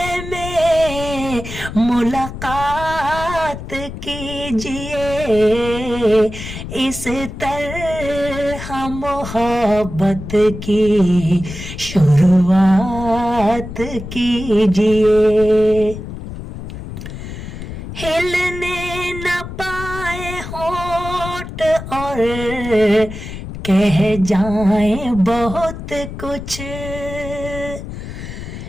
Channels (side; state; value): left; noise; rumble, 9 dB below the sound